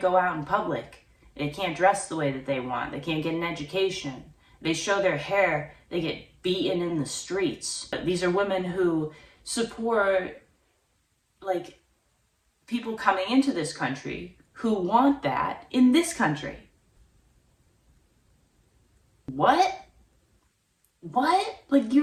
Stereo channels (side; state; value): both; identical; correlation 1.00